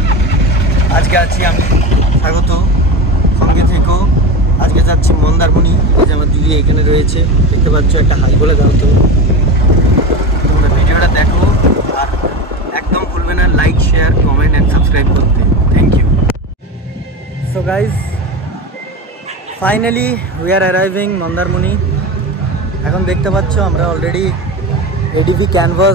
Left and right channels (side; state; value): both; normal; correlation 0.24